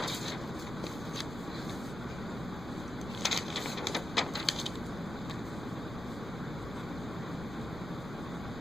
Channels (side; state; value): left; noise; rumble, 13 dB below the sound